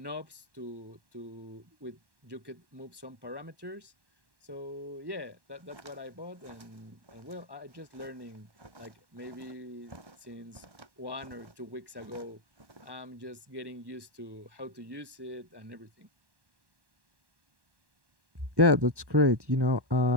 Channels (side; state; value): left; late; 1.1 ms